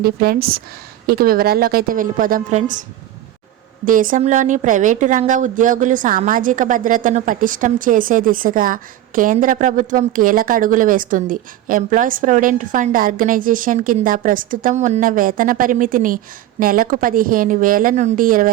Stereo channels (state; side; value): quieter; left; 13.1 dB